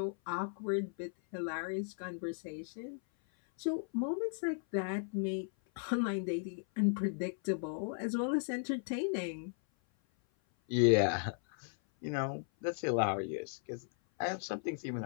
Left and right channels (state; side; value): silent; right; 54 dB below the other